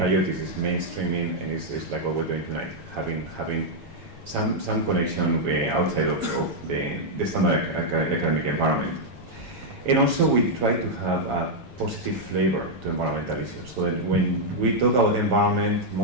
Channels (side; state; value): left; late; 7.8 ms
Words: is mainstreaming, and it's like what we're doing tonight, having some connection outside of the standard academic environment. And also we try to have a positive flavor to environmental issues. So that when we talk about the environment,